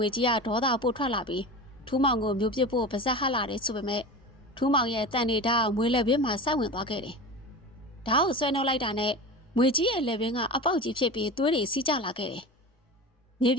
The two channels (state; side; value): normal; both; correlation 0.30